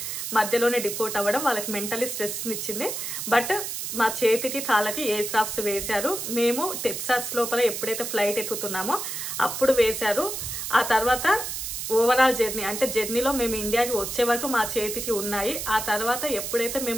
మధ్యలోనే డిపోర్ట్ అవ్వడం వాళ్ళకి మెంటల్లీ స్ట్రెస్ని ఇచ్చింది. బట్ మా చేతికి కాళ్ళకి ఎయిర్ క్రాఫ్ట్స్ వేశారు. మేము టెక్సాస్ లోపల ఎప్పుడైతే ఫ్లైట్ ఎక్కుతున్నామో అప్పుడు వేశారు. ఆ తర్వాత ఓవరాల్ జర్నీ అంటే జర్నీలో మేము ఇండియాకి వచ్చే వరకు మా చేతికి ఉన్నాయి. ఆ తర్వాత ఎప్పుడైతే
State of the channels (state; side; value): noise; right; hiss, 5 dB below the sound